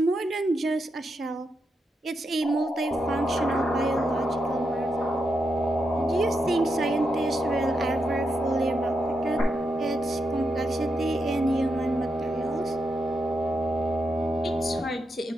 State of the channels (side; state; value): both; normal; correlation 0.84